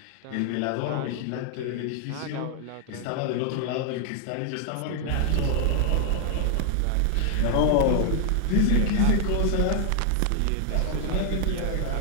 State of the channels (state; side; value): different; both; correlation 0.00